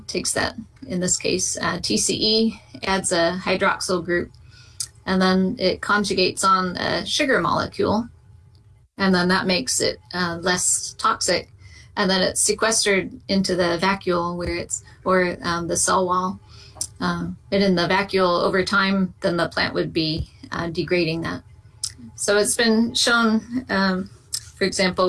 takes that, in this case, TCE, adds a hydroxyl group, and then it conjugates on a sugar molecule, and then that makes it less toxic. And then it's sequestered into the vacuole or the cell wall. And in the vacuole, over time, then the plant would be degrading that. So it's been shown, for example,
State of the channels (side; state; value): both; identical; correlation 1.00